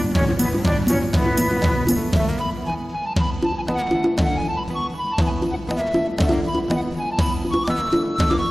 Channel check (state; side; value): normal; both; correlation 0.97